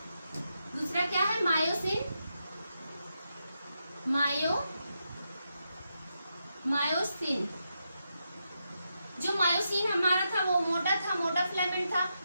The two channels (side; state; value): both; inverted; correlation -0.85